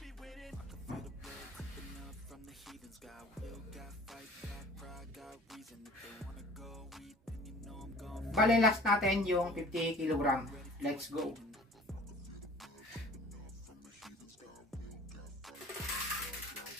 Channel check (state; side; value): normal; both; correlation 0.47